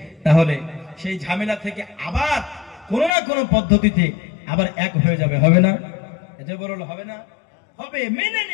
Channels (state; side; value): drops out; right; at 3.2 s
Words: তাহলে সেই ঝামেলা থেকে আবার কোনো না কোনো পদ্ধতিতে আবার এক হয়ে যাবে। হবে না? এটা বলল হবে না, হবে, মেনে